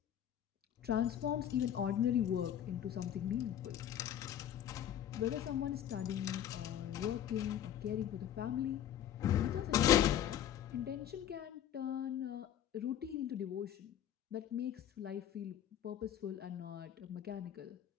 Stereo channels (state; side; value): quieter; right; 10.6 dB